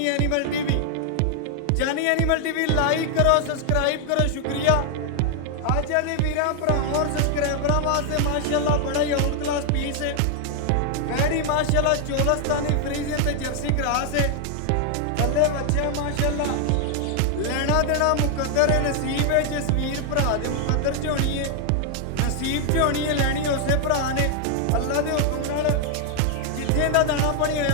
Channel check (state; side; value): different; both; correlation 0.00